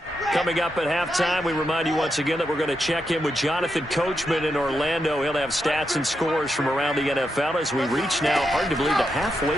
Coming up at halftime, we remind you once again that we're going to check in with Jonathan Coachman in Orlando. He'll have stats and scores from around the NFL as we reach now, hard to believe, the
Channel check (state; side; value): normal; both; correlation 0.85